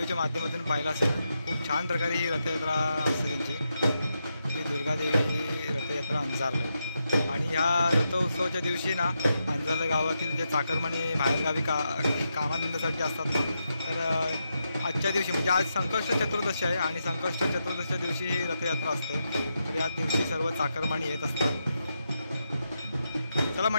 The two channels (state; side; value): inverted; both; correlation -0.85